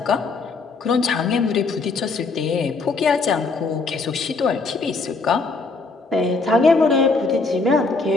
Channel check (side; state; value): right; quieter; 4.0 dB